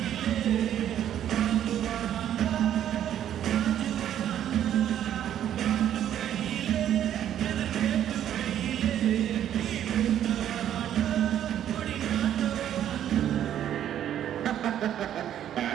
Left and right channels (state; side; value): quieter; left; 10.7 dB